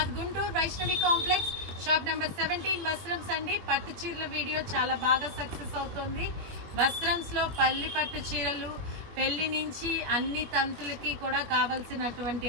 Guntur Vaishnavi complex shop number 17 Vastrams అండి. పట్టు చీరల వీడియో చాలా బాగా సక్సెస్ అవుతుంది. వస్త్రమ్స్ లో పట్టు చీరలు పెళ్లి నుంచి అన్ని తంతులకి కూడా కావాల్సినటువంటి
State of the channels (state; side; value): late; left; 21 ms